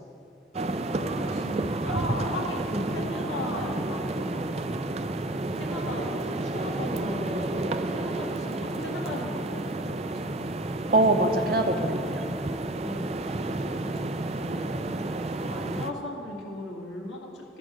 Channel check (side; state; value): both; normal; correlation 0.42